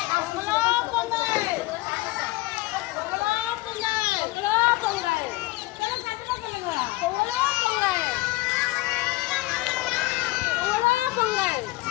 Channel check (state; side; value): quieter; right; 20.4 dB